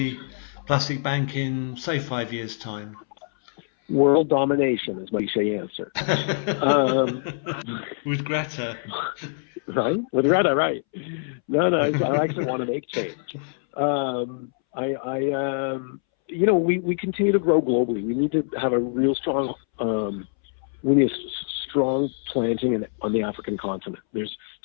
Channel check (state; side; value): silent; right; 62 dB below the other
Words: Plastic Bank in, say, 5 years' time? World domination is my cliche answer. With Greta. Right? With Greta, right. No, I actually want to make change. We continue to grow globally. We need to have a real strong, strong planting on the African continent. There's